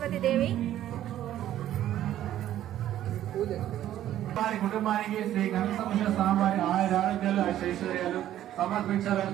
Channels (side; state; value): left; quieter; 12.3 dB